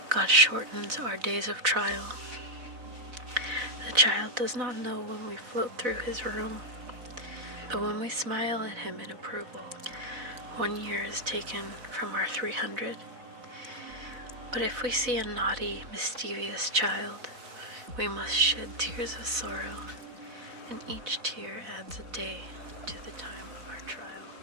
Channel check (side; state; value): left; late; 4.0 ms